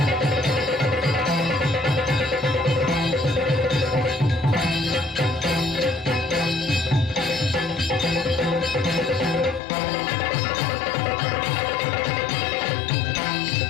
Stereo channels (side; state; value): right; drops out; at 9.6 s